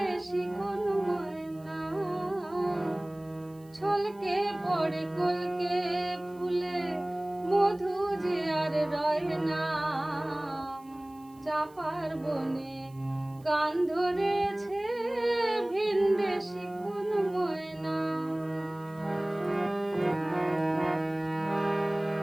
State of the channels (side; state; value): right; noise; hiss, 29 dB below the sound